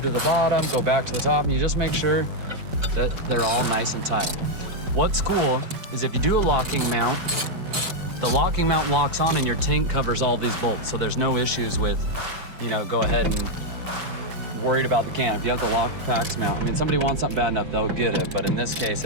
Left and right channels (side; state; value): left; late; 5.4 ms